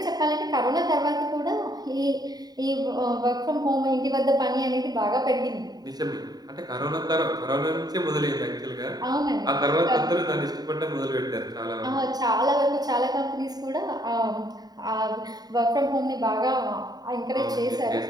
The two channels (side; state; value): left; late; 0.19 ms